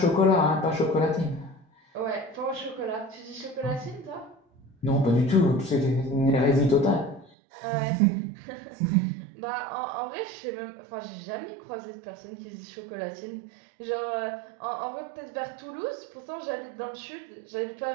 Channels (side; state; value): left; drops out; at 7.3 s